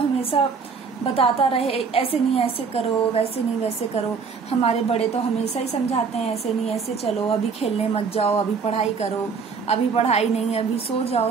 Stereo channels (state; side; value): quieter; left; 5.4 dB